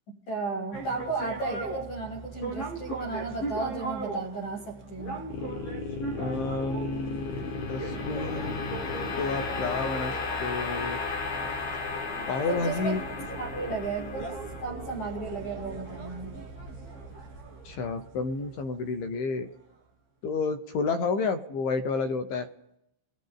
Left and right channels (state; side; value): late; right; 15 ms